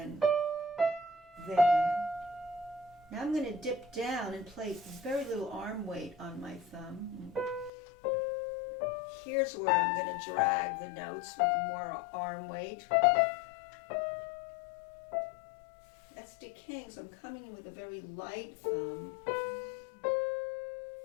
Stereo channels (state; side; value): drops out; right; at 7.7 s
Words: there. Now I'm going to dip down and play very little arm weight on my thumb. Here's where I'm going to drag the notes with more arm weight. That's decaying, so I'm coming in with a very light thumb.